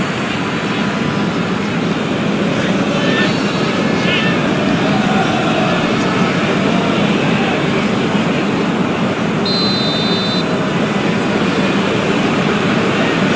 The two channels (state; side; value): identical; both; correlation 1.00